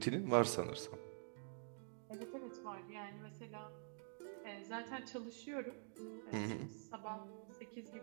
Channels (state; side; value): silent; left; digital silence